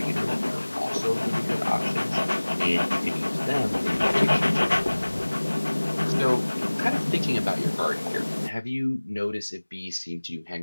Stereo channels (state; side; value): inverted; both; correlation -1.00